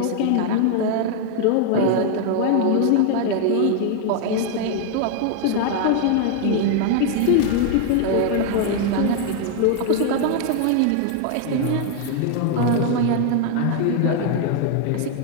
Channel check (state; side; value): different; both; correlation 0.00